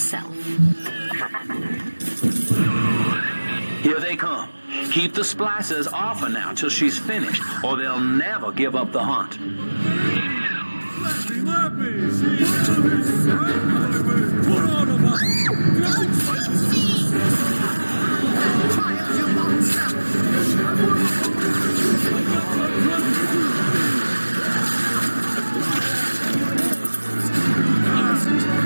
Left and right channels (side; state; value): both; inverted; correlation -1.00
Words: Here they come. Keep the splicers off her now till she's finished, or they'll never give up the hunt.